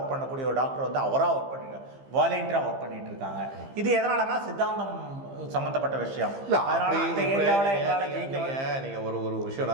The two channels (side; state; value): left; late; 15 ms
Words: பண்ணக்கூடிய ஒரு டாக்டர் வந்து அவராக ஒர்க் பண்ணிருக்காங்க, வாலண்டியராக ஒர்க் பண்ணிட்டு இருக்காங்க. இது எதனாலனா சித்தாந்தம் சம்மந்தப்பட்ட விஷயம். அதனால அந்த ஏரியாவில் எங்களால் ஜெயிக்க. நீங்கள் ஒரு விஷயம்